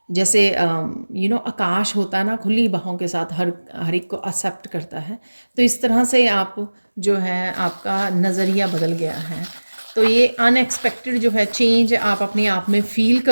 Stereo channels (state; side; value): inverted; both; correlation -1.00